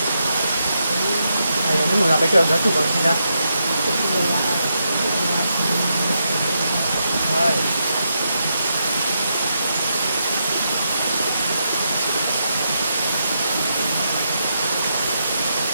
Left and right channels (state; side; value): inverted; both; correlation -0.83